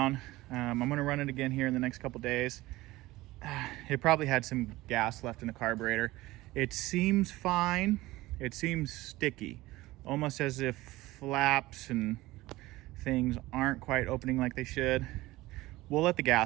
I'm gonna run it again here in the next couple days. It probably had some gas left in the carburetor. It seems fine. It seems sticky, almost as if flaps and things aren't quite opening like they should. We'll let the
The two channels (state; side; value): quieter; left; 18.6 dB